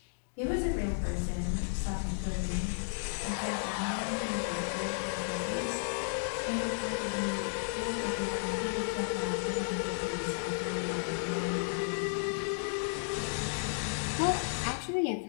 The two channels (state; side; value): silent; right; digital silence